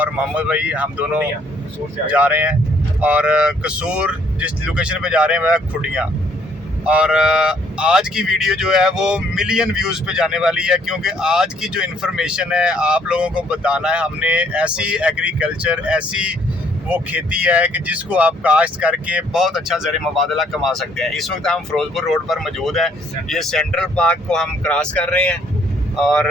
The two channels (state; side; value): normal; both; correlation 0.65